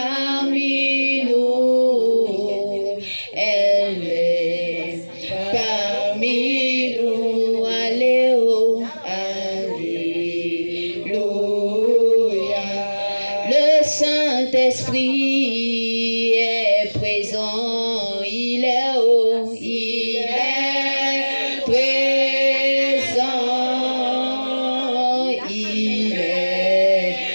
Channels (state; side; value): inverted; both; correlation -1.00